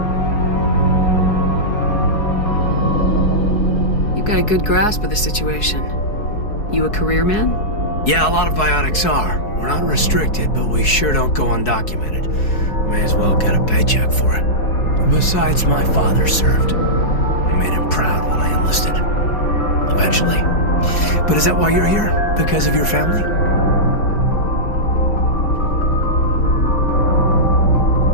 You've got a good grasp of the situation. You a career man? Yeah, a lot of biotics are. We're not restricted, but we sure don't go undocumented. May as well get a paycheck for it. Besides, my father served. I made him proud when I enlisted. Eventually. But is that why you're here? Because of your family?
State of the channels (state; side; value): late; right; 4.7 ms